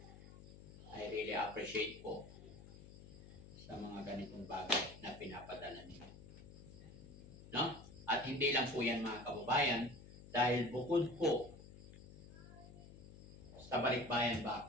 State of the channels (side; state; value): left; noise; hum, 16 dB below the sound